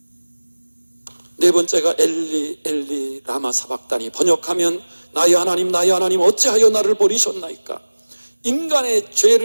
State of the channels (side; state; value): both; inverted; correlation -1.00